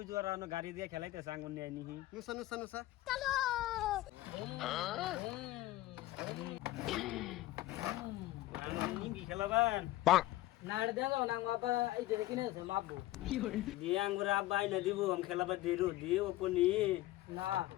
জোরা নো গাড়ি দিয়ে খেলাইতেছে আঙ্গুর নিয়ে নিহি নুসা নুসা নুসা চলো আঙ্গুর নিবি খেলাবান নাড় দেও না বাবা এই যে কিনেছে মাপবো দিয়ে আঙ্গুর আব্বা আইনা দিব আম খেলাবা দিরু দিয়ে ওপনি না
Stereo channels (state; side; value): quieter; right; 16.6 dB